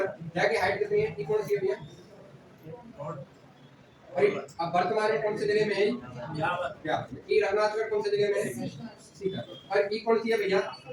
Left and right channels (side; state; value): both; identical; correlation 1.00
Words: जहाँ की हाइट कितनी है? ये कौन सी है भैया? अब वर्तमान में कौन से जिले में है? ये रघुनाथगढ़ कौन से जिले में है? सीकर। और ये कौन सी है भैया?